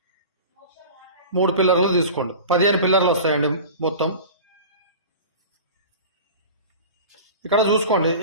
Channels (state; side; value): inverted; both; correlation -0.36